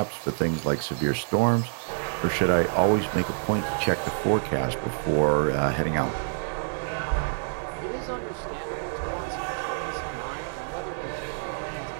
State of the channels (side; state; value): left; silent; digital silence